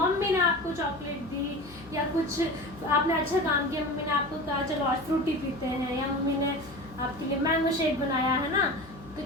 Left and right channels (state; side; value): noise; left; hum, 19 dB below the sound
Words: ने आपको चॉकलेट दी, या कुछ आपने अच्छा काम किया, मम्मी ने आपको कहा चलो आज फ्रूटी पीते हैं, या मम्मी ने आपके लिए मैंगो शेक बनाया, है ना।